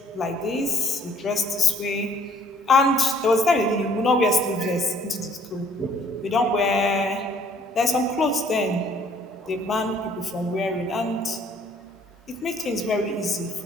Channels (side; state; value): both; normal; correlation 0.59